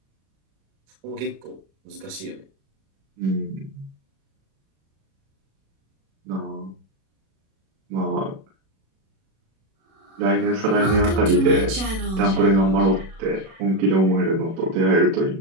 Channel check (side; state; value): left; late; 37 ms